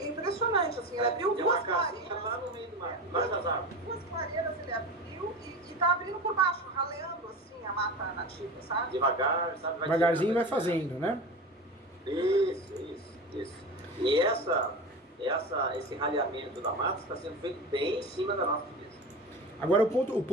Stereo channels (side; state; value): both; normal; correlation 0.29